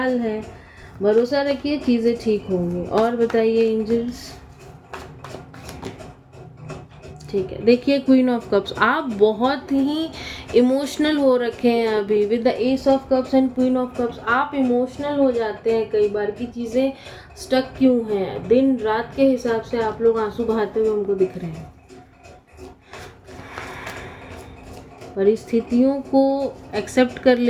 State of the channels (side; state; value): both; identical; correlation 1.00